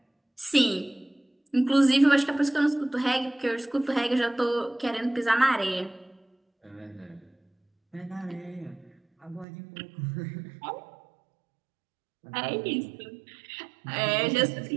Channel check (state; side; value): drops out; left; at 9.5 s